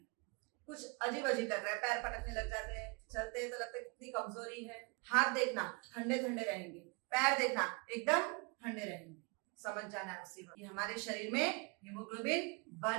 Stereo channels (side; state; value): left; quieter; 31.2 dB